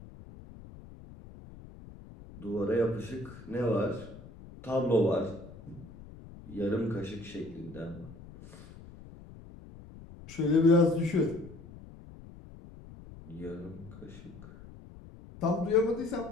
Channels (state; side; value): noise; left; rumble, 17 dB below the sound